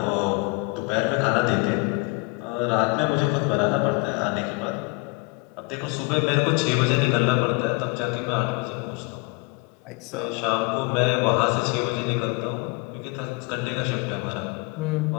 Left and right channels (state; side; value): quieter; right; 28.6 dB